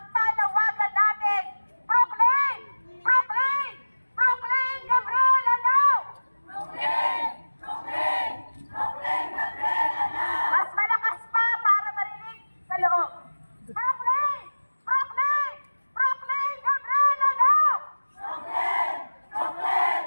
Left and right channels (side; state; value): both; inverted; correlation -1.00